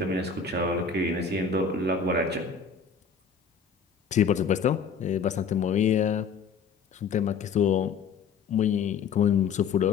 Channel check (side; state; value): right; quieter; 6.0 dB